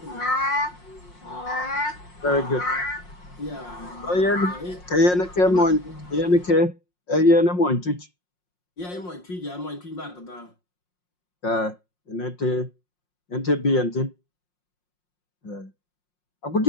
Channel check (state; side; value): late; right; 5.6 ms